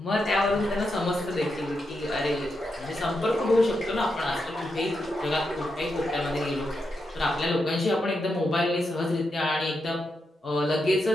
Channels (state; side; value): normal; both; correlation 0.85